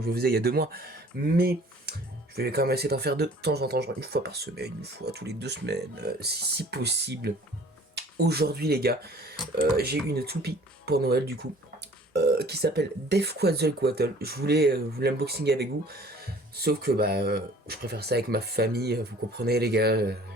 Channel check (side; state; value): both; normal; correlation 0.51